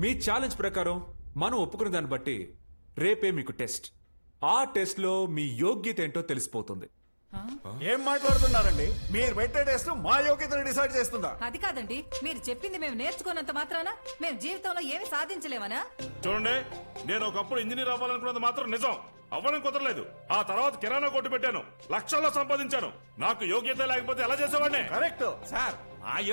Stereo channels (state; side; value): inverted; both; correlation -1.00